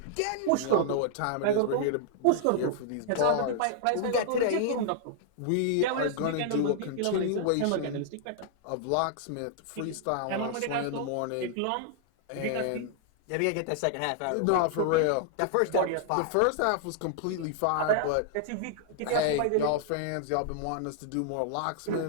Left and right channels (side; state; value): both; different; correlation -0.01